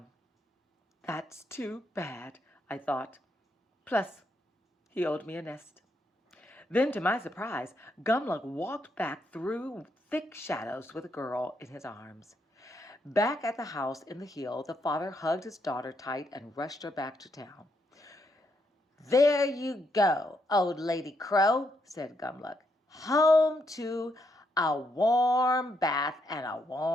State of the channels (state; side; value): normal; both; correlation 0.77